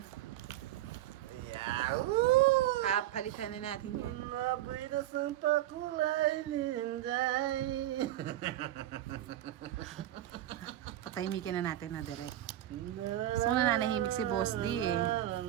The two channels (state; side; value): quieter; left; 13.5 dB